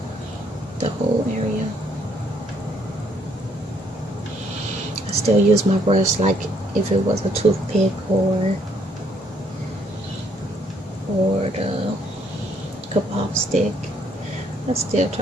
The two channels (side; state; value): both; normal; correlation 0.68